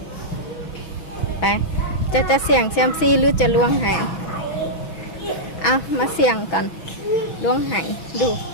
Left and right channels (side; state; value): right; late; 6.1 ms